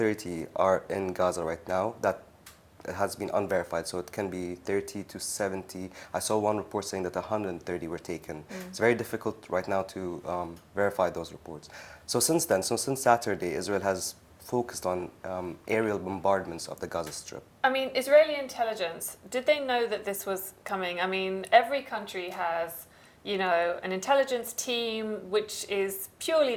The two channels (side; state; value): both; identical; correlation 1.00